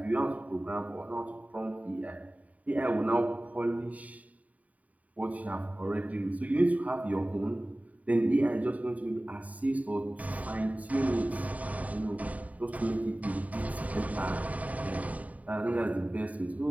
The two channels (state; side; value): late; left; 0.071 ms